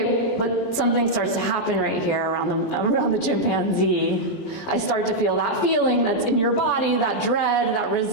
but something starts to happen right here around the chimpanzee. I start to feel that feeling that's in your body, that dread, that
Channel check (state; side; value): late; right; 20 ms